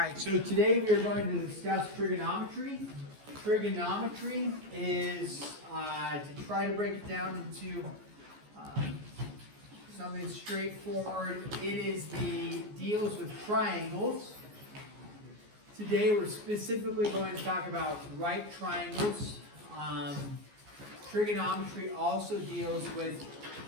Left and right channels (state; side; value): late; left; 14 ms